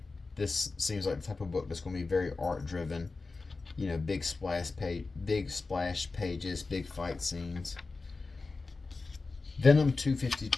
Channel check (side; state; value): right; quieter; 3.9 dB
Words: this seems like the type of book that's going to be very art driven. You know, big splash pages, big fight scenes. Venom